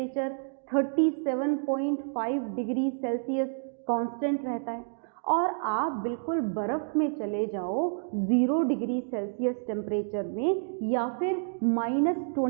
37.5 degree Celsius constant रहता है। और आप बिल्कुल बर्फ़ में चले जाओ 0 डिग्री सेल्सियस टेम्परेचर में, या फिर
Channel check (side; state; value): left; silent; digital silence